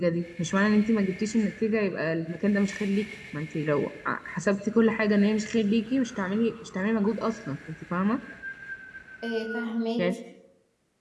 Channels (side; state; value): both; identical; correlation 1.00